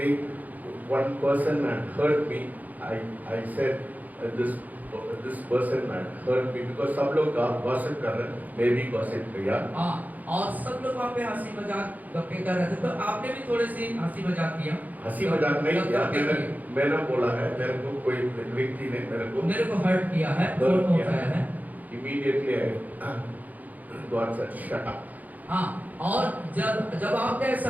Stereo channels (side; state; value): left; late; 0.080 ms